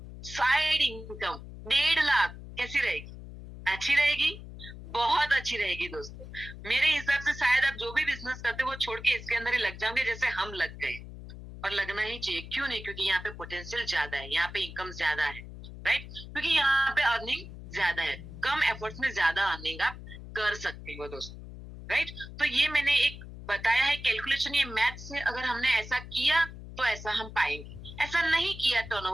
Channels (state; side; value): noise; left; hum, 13 dB below the sound